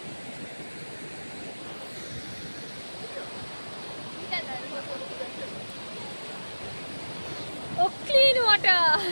ও ক্লিন ওয়াটার।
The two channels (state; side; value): inverted; both; correlation -1.00